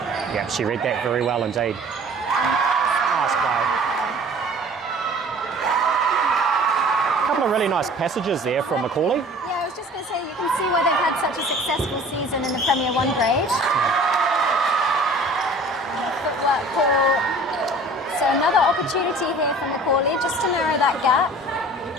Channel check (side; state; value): both; normal; correlation 0.46